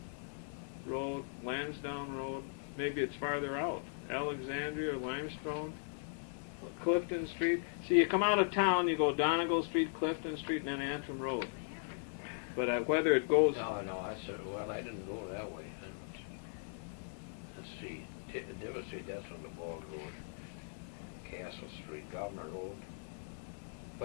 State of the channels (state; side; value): silent; right; 52 dB below the other